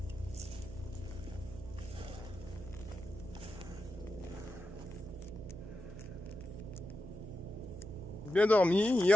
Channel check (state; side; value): noise; right; hum, 12 dB below the sound